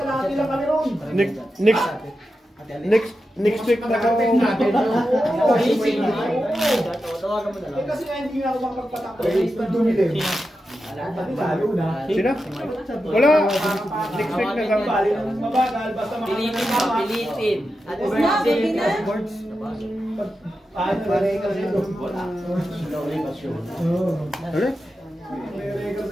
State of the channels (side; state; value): both; normal; correlation 0.90